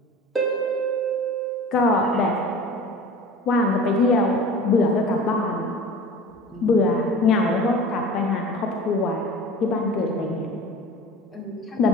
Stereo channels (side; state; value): both; normal; correlation 0.39